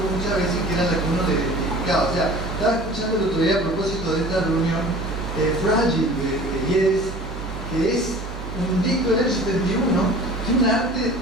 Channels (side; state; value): both; normal; correlation 0.43